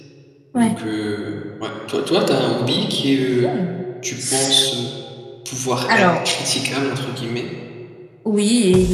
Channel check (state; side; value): identical; both; correlation 1.00